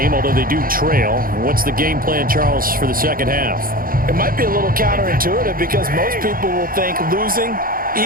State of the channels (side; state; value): left; late; 0.41 ms